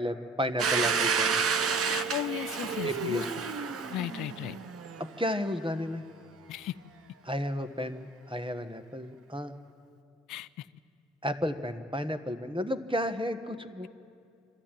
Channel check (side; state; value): both; normal; correlation 0.49